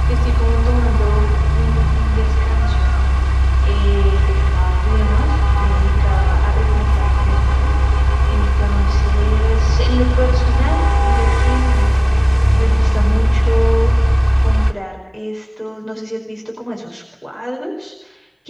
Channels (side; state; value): both; identical; correlation 1.00